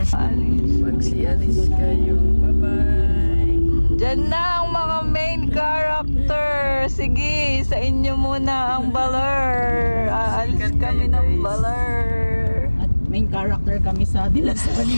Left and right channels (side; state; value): both; inverted; correlation -1.00